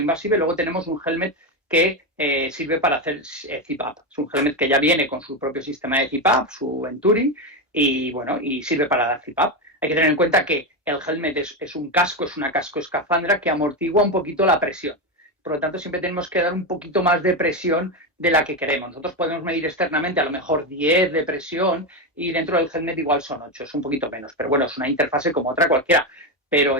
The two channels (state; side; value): normal; both; correlation 0.12